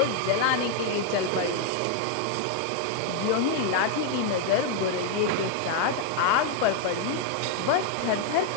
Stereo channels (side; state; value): both; different; correlation 0.00